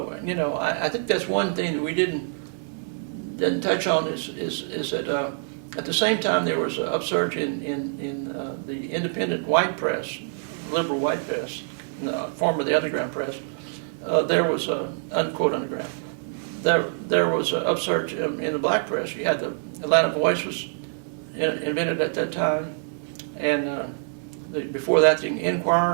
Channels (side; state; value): left; silent; 61 dB below the other